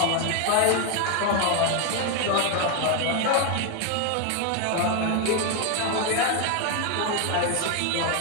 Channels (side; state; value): both; different; correlation 0.01